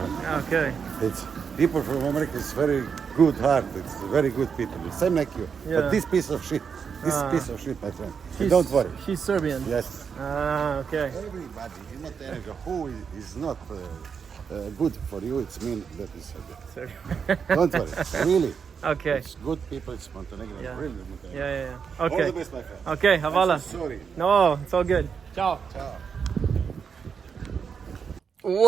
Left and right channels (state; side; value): quieter; left; 6.4 dB